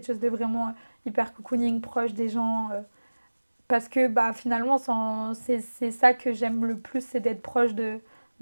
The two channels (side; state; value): both; inverted; correlation -1.00